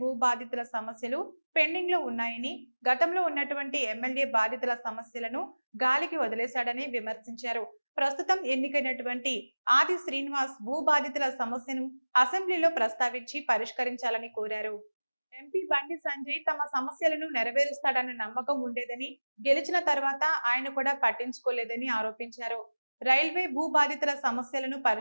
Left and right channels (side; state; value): both; inverted; correlation -1.00